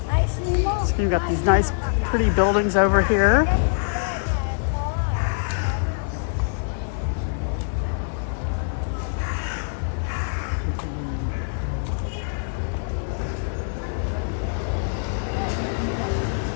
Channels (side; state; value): right; silent; 63 dB below the other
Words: So you've got these nice pretty buildings over here.